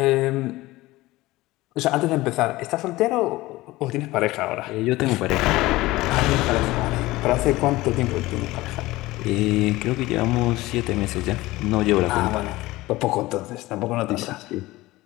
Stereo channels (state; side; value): quieter; right; 18.9 dB